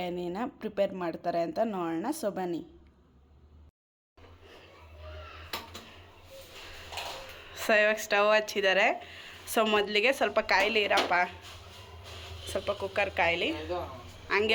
ಪ್ರಿಪೇರ್ ಮಾಡ್ತಾರೆ ಅಂತ ನೋಡೋಣ. ಸೊ ಬನ್ನಿ. ಸೊ ಇವಾಗ ಸ್ಟವ್ ಹಚ್ಚಿದ್ದಾರೆ. ಸೊ ಮೊದಲಿಗೆ ಸ್ವಲ್ಪ ಕಾಯಿಲಿ ಇರಪ್ಪ, ಸ್ವಲ್ಪ ಕುಕ್ಕರ್ ಕಾಯಿಲಿ.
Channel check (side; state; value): both; identical; correlation 1.00